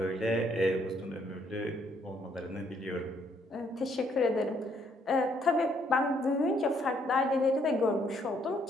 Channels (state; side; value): normal; both; correlation 0.69